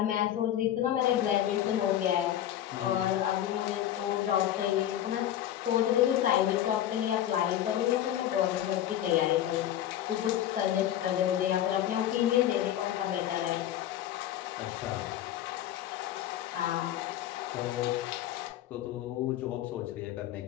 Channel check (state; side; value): quieter; right; 11.7 dB